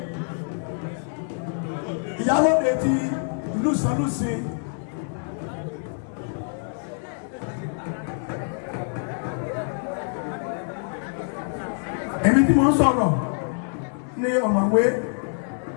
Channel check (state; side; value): silent; right; 60 dB below the other